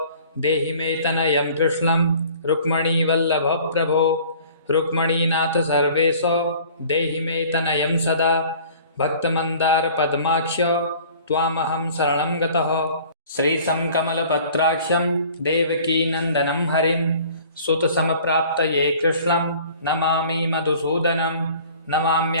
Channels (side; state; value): both; inverted; correlation -0.49